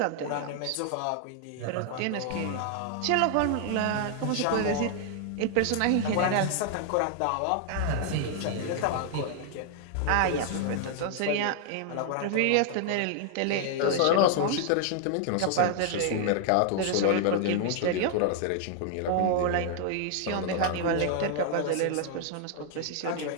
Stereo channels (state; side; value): different; both; correlation 0.00